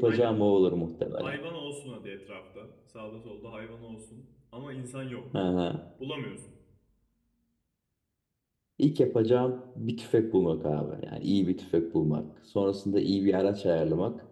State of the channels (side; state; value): both; identical; correlation 1.00